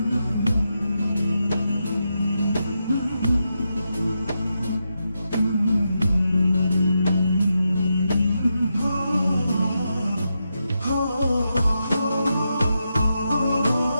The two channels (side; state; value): both; inverted; correlation -0.86